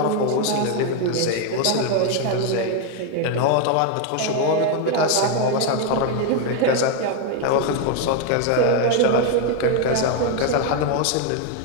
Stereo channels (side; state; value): both; different; correlation 0.01